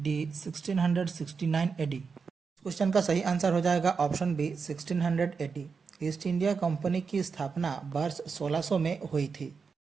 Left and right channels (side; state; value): left; quieter; 5.3 dB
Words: 1669 AD. Question का सही आंसर हो जाएगा option B 1600 AD. East India Company की स्थापना वर्ष 1600 में हुई थी।